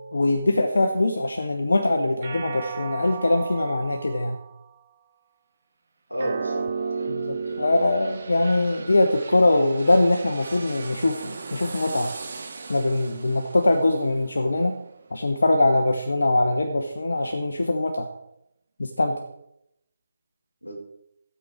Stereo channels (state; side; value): inverted; both; correlation -0.94